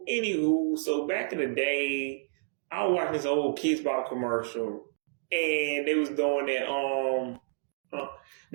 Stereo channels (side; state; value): left; silent; digital silence